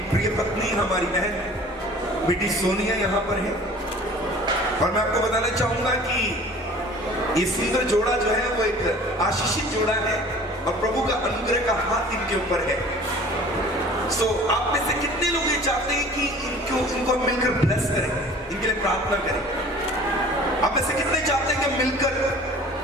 प्रिय पत्नी हमारी बहन बेटी सोनिया यहाँ पर है। और मैं आपको बताना चाहूंगा कि ये सुंदर जोड़ा जो है वो एक आशीषित जोड़ा है और प्रभु का अनुग्रह का हाथ इनके ऊपर है। सो आप में से कितने लोग ये चाहते हैं कि इनको मिलकर ब्लेस करें, इनके लिए प्रार्थना करें? आप में से कितने चाहते हैं कि मिलकर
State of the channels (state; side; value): normal; both; correlation 0.46